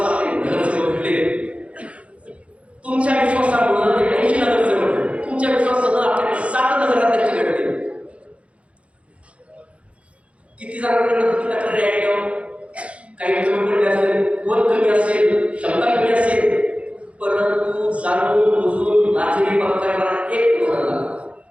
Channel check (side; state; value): left; late; 0.062 ms